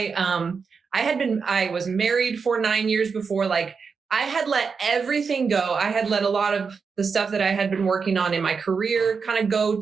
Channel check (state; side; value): quieter; left; 5.4 dB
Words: was married for 9 years before. Like I had let everything go. I had let a lot of the stuff that I had been working on in my career kind of go